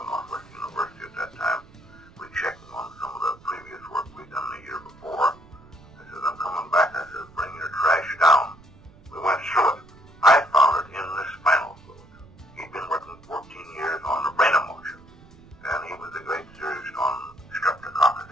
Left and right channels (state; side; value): noise; right; rumble, 24 dB below the sound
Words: at Northwestern University at that time. We checked on some of the previous work we'd done the year before. I said, I'm coming back. I said, bring your trash down. We went through it. I found it in the spinal fluid. He'd been working 14 years on the brain emotion, and he was a great theorist on streptococcus.